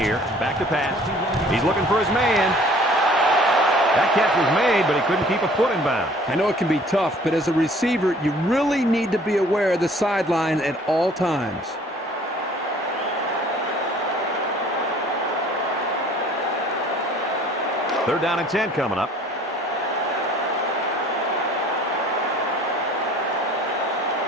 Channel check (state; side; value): normal; both; correlation 0.53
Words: Back to pass. He's looking for his man. That catch was made, but he couldn't keep a foot in bounds. I know it can be tough, but as a receiver, you really need to be aware of the sideline at all times. Third down and 10 coming up.